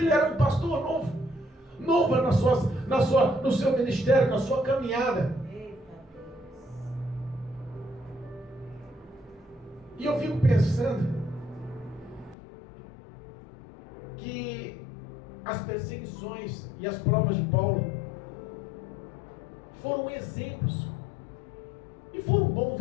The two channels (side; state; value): right; drops out; at 12.4 s